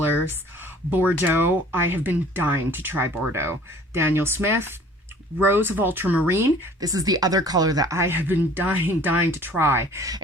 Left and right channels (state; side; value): normal; both; correlation 0.51